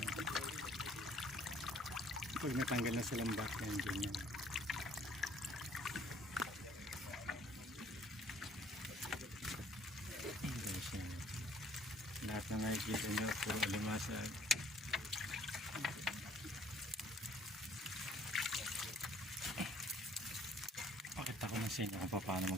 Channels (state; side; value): normal; both; correlation 0.59